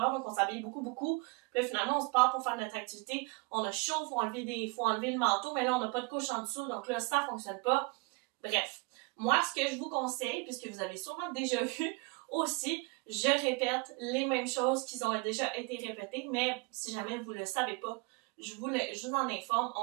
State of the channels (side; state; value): left; quieter; 30.0 dB